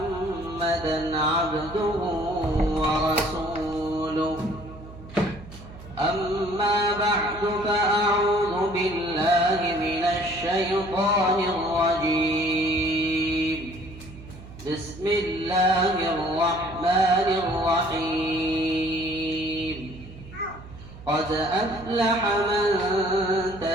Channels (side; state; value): right; noise; hum, 16 dB below the sound